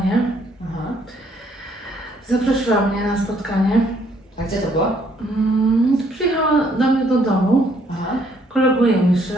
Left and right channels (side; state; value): both; normal; correlation 0.67